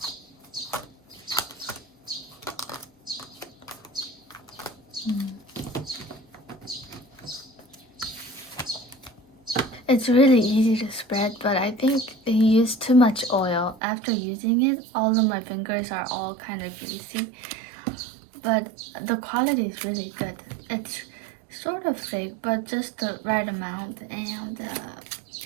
It's really easy to spread, but I think they use too much oil. After using it, all of my fingers are all kind of greasy. But the quality is really good. It's sort of thick, but just the right amount. And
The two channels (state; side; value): drops out; left; at 13.8 s